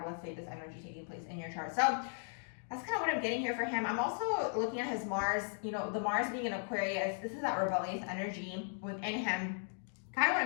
let's say, this energy taking place in your chart. So that's kind of what I'm getting here for him. I'm also looking at his Mars, you know, the Mars being in Aquarius, this is that rebellious energy within him. Kind of what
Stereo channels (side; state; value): right; silent; 53 dB below the other